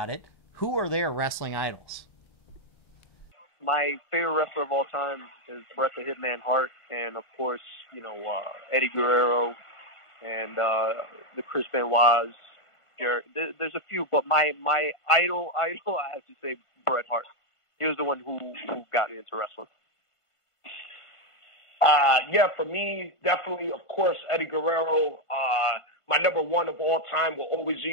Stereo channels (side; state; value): right; late; 1.5 ms